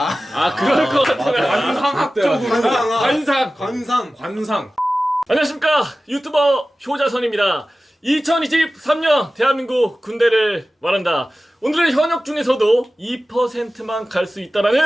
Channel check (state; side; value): normal; both; correlation 0.96